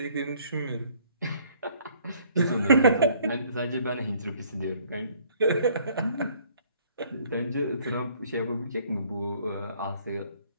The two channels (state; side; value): inverted; both; correlation -0.60